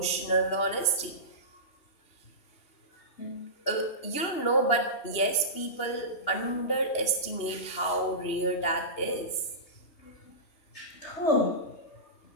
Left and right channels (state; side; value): late; right; 2.9 ms